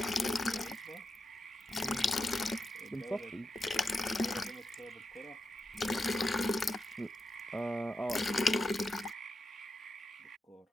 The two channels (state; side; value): normal; both; correlation 0.88